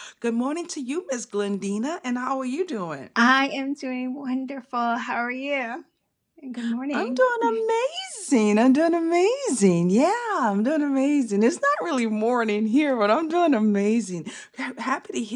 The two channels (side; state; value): both; identical; correlation 1.00